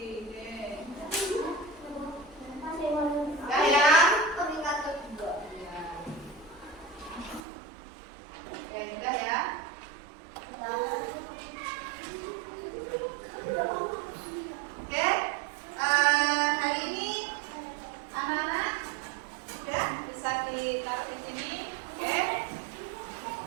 Udah ya. Oke, udah ya. Oke, hari ini anak-anak sudah bisa ditaruh di sini. Oke.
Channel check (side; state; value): left; drops out; at 7.4 s